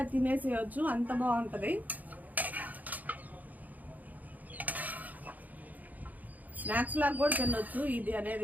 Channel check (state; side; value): late; left; 0.080 ms